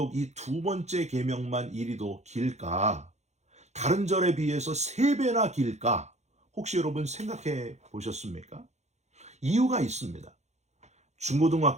이 두 번째 계명만 이리도 길까? 다른 절에 비해서 3배나 길까? 혹시 여러분 생각해 보셨습니까? 이유가 있습니다.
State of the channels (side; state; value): left; late; 0.33 ms